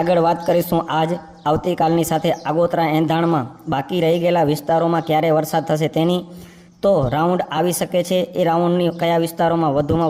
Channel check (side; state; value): both; identical; correlation 1.00